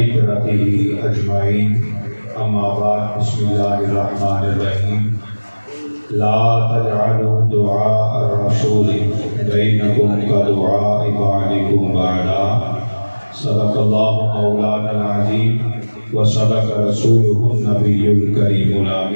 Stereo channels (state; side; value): inverted; both; correlation -1.00